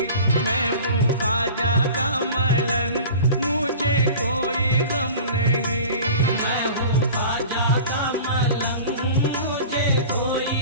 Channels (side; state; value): both; inverted; correlation -0.39